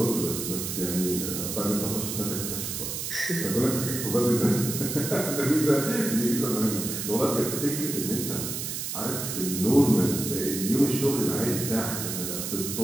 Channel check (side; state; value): right; noise; hiss, 4 dB below the sound